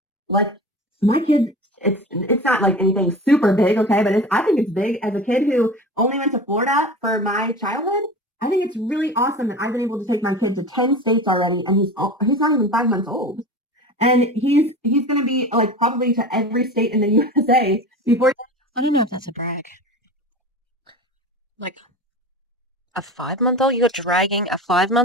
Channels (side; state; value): both; normal; correlation 0.33